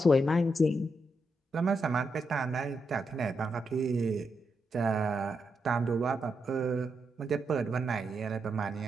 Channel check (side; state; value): both; normal; correlation 0.83